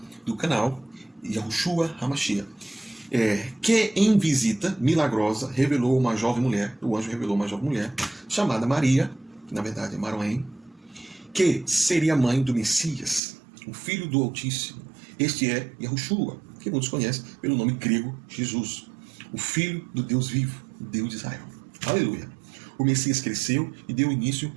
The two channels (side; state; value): left; drops out; at 13.2 s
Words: do canal, Yahushua HaMashiach. Que em visita milagrosa revelou uma jovem mulher, o anjo revelou uma jovem mulher, chamada Maria, que na verdade é Maroém, que seria mãe do Messias, o Filho do Altíssimo. Este é Yahushua, que muitos conhecem pelo nome grego Jesus, o Filho do Deus vivo, Deus de Israel. Aleluia! O Messias cresceu e deu início